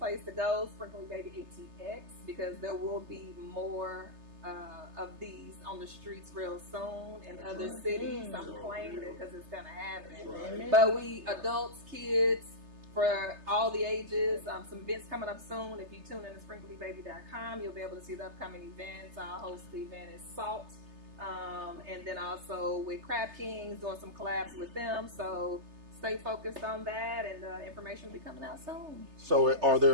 to go. Sprinkle Me Baby ATX, because there will be more of these on the streets real soon in other cities. I'm claiming it because it's gonna happen. Right. But we adults, kids, for all the ages. Some events coming up soon. If you tune in to sprinklemebaby.com, you'll be able to see the upcoming events. I'll host the event at Salt. And then also with Crab Kings, doing some collabs with them. So stay focused on that, and information will be coming out soon. So are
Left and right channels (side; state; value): left; late; 3.3 ms